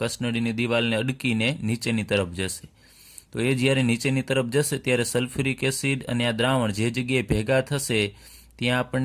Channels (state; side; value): identical; both; correlation 1.00